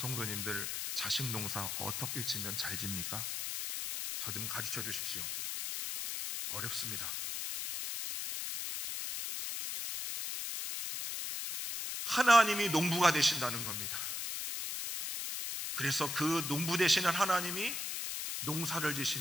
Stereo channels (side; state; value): left; noise; hiss, 3 dB below the sound